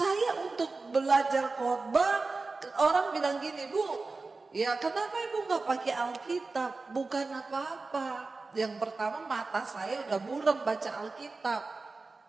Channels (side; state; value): left; quieter; 3.8 dB